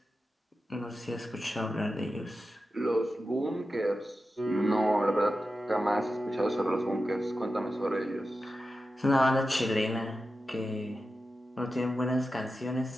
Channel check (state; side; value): normal; both; correlation 0.92